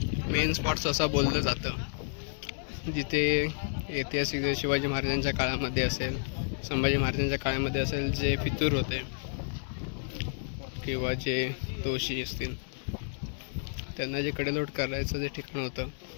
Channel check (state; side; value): silent; right; digital silence